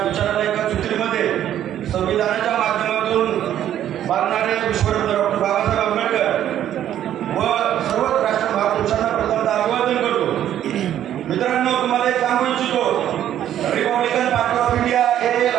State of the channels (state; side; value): quieter; left; 11.2 dB